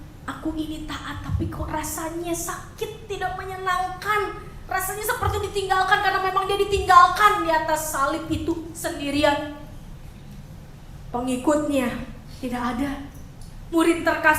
aku ini taat tapi kok rasanya sakit, tidak menyenangkan. Rasanya seperti ditinggalkan," karena memang dia ditinggalkan di atas salib itu sendirian. Pengikutnya tidak ada. Murid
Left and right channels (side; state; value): both; identical; correlation 1.00